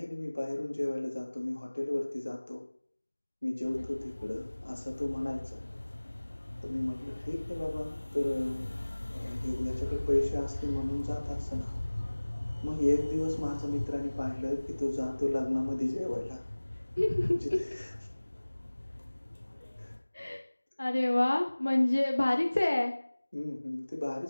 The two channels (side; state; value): both; inverted; correlation -1.00